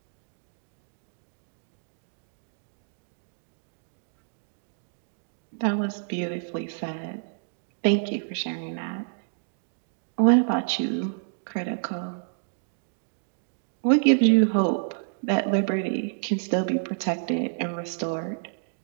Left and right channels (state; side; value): silent; left; digital silence